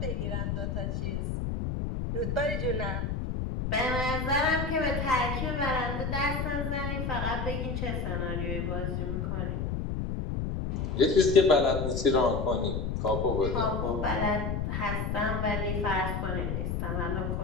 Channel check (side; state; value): left; noise; rumble, 2 dB below the sound